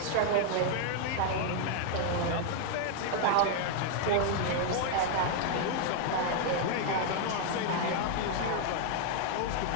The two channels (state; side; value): different; both; correlation 0.00